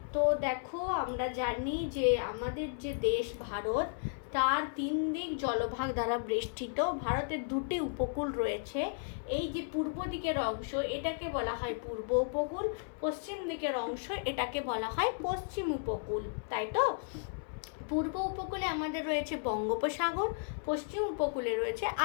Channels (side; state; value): right; silent; 55 dB below the other